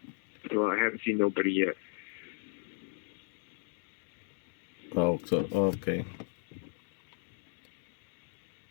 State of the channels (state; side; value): silent; right; 54 dB below the other